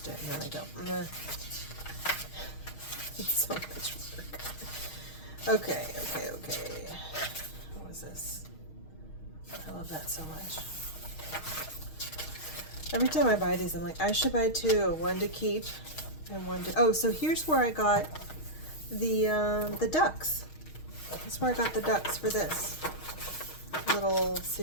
it, and then I go, meh. It's so much work. Okay. What was this? I love that so much. Every time I buy these, I'm like, I should buy two, one to keep and one to, oh, so here's where I got the ducks. That's where I got the ducks for this little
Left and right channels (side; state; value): right; late; 6.4 ms